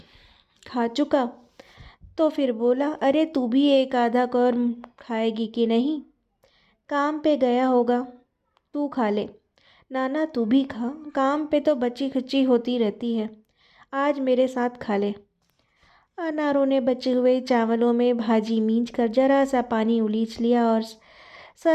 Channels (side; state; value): both; identical; correlation 1.00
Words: खा चुका तो फिर बोला, अरे तू भी एक आधा कौर खाएगी कि नहीं? काम पे गया होगा, तू खा ले। नाना तू भी खा, काम पे तो बची खुची होती रहती है, आज मेरे साथ खा ले। अनारों ने बचे हुए चावलों में भाजी मींच कर जरा सा पानी उलीच लिया और